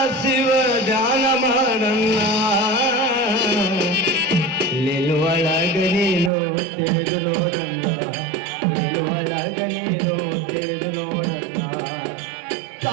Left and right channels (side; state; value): left; drops out; at 6.3 s